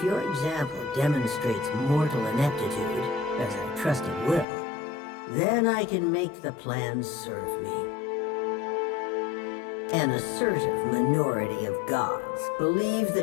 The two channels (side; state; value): right; drops out; at 4.5 s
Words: your example demonstrates mortal ineptitude, as I trust it will, then I can make the plans serve me. An assertive minority of gods believe